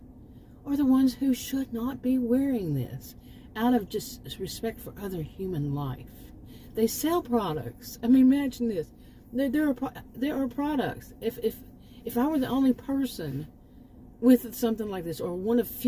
are the ones who should not be wearing this, out of just respect for other human life. They sell products. I mean, imagine this. There are products. If I were the only person with something like this, or one of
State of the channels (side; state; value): both; identical; correlation 1.00